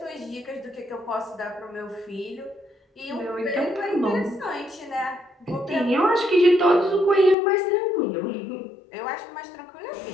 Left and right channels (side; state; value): right; drops out; at 7.4 s